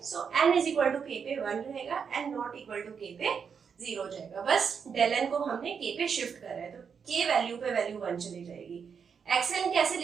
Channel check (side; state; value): left; quieter; 6.5 dB